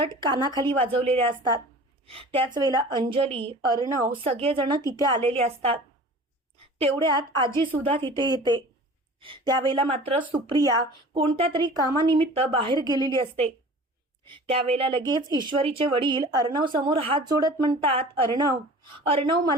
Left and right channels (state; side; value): normal; both; correlation 0.42